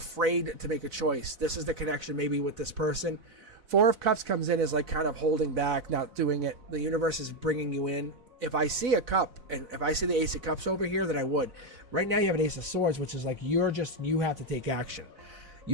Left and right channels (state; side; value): late; left; 4.0 ms